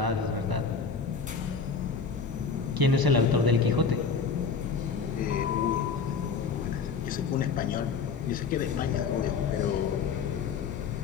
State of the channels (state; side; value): quieter; right; 5.4 dB